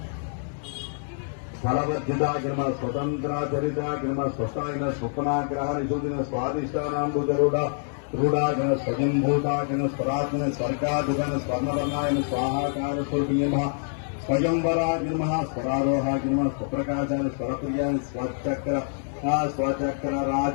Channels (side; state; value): right; silent; 61 dB below the other